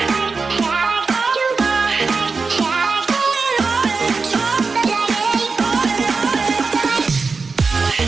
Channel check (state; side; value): quieter; left; 4.4 dB